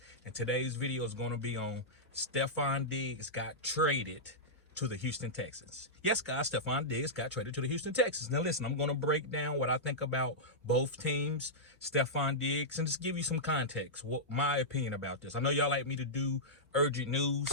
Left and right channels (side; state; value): both; normal; correlation -0.11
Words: And today's video is going to be on Stefon Diggs got traded to the Houston Texans. Yes, guys, Stefon Diggs got traded to the Houston Texans. Now, listen, I'm going to break down what I think about both teams, Stefon Diggs, and just give you some context, what my opinion about this. I know y'all like me to do urgent